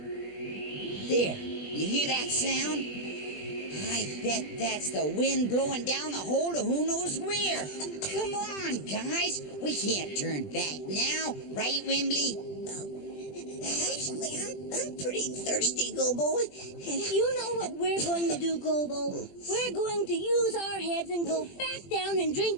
There, you hear that sound? I bet that's the wind blowing down the hole to who knows where. Come on, guys. We can't turn back now. Right, Wimbley? Actually, I'm pretty thirsty, Gobo. You know what we're going to do, Gobo? We're going to use our heads and go back down and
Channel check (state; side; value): late; right; 20 ms